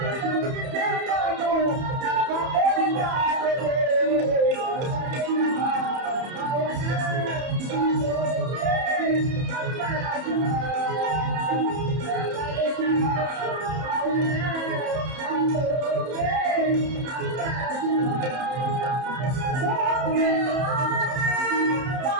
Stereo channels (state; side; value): late; left; 31 ms